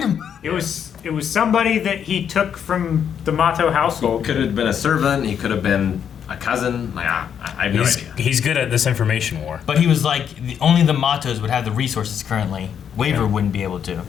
him? It was somebody that he took from the Mato household. Could have been a servant. He could have been a cousin. Like I have no idea. He's good at this information war. But he was like, only the Matos would have the resources currently. Waver wouldn't be able to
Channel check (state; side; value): quieter; right; 8.2 dB